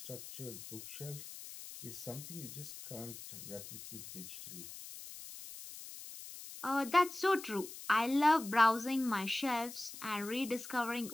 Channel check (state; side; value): noise; left; hiss, 12 dB below the sound